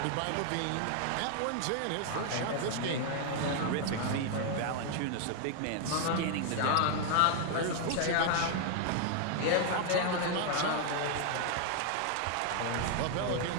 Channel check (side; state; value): both; different; correlation 0.00